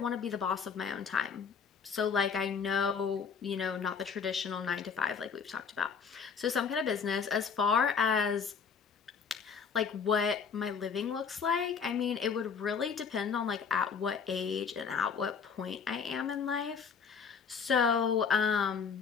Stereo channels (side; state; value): right; quieter; 6.2 dB